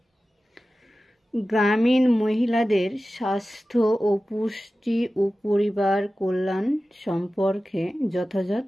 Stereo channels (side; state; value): both; normal; correlation 0.95